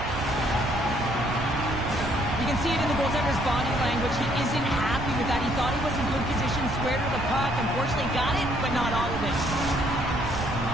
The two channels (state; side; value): noise; right; rumble, 7 dB below the sound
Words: You can see it in the goaltender's body language. He isn't happy with that. He thought he was in good position, squared with the puck. Unfortunately, got it, but not all of it.